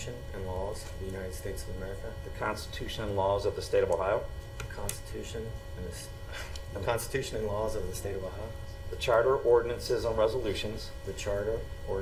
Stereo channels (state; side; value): identical; both; correlation 1.00